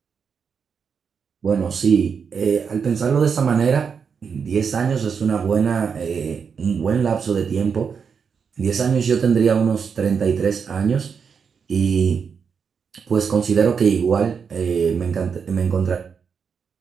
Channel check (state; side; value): quieter; left; 6.3 dB